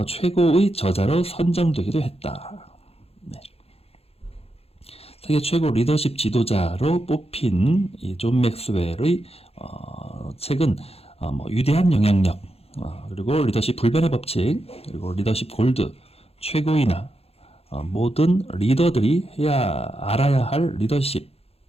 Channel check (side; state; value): right; late; 0.29 ms